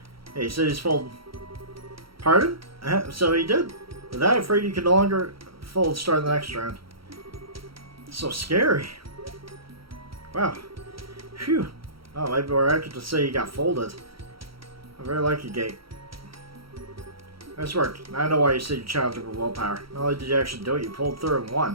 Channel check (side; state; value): left; late; 0.75 ms